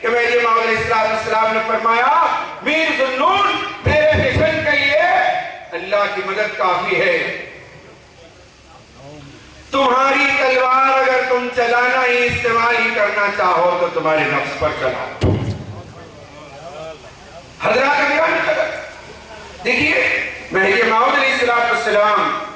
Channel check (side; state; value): both; identical; correlation 1.00